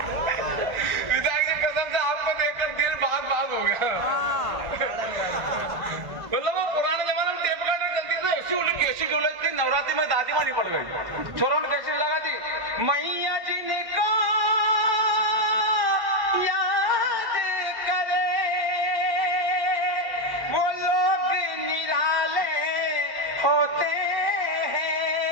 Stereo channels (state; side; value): late; left; 1.6 ms